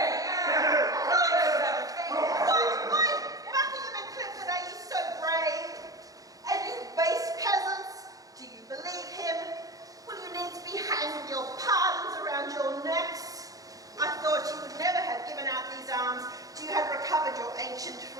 Why, Buckingham and Clifford, are you so brave? And you base peasants, do you believe him? Will you needs be hanging your pardons around your necks? I thought you would never have given out these arms till you had recovered your ancient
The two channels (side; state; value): left; late; 0.17 ms